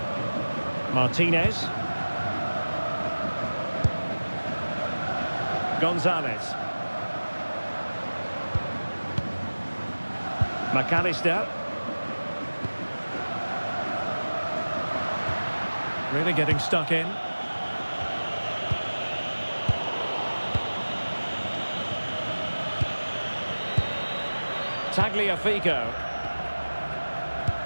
Martinez. Gonzalez. McAllister. Really getting stuck in. Tagliafico.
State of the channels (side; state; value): both; inverted; correlation -1.00